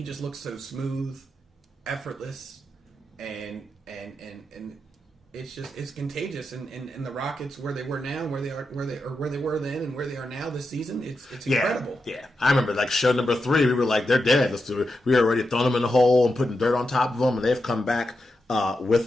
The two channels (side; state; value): both; normal; correlation 0.87